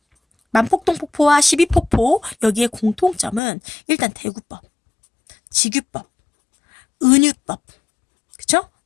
만폭동폭포와 12폭포 여기에 공통점은 일단 대구법, 직유법, 은유법, 그쵸?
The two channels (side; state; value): right; drops out; at 3.4 s